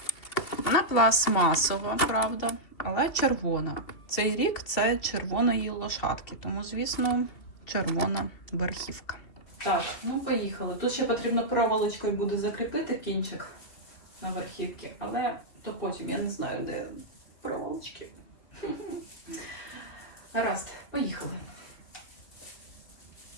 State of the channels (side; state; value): right; late; 2.7 ms